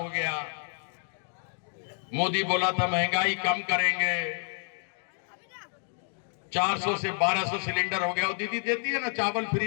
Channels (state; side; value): silent; right; 58 dB below the other